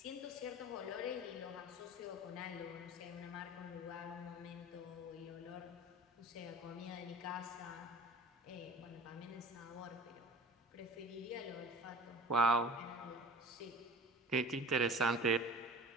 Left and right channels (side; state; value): both; normal; correlation 0.41